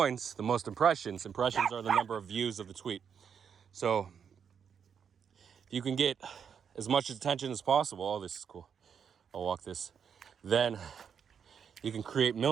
the most impressions. Impressions are the number of views of the tweet. So if you can get as much attention as possible, oh, this is cool, I'll walk this, then you can create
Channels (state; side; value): quieter; left; 7.3 dB